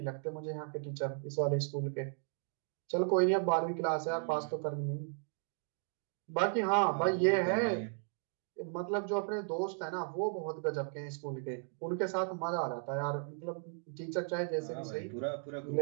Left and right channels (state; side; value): silent; left; 54 dB below the other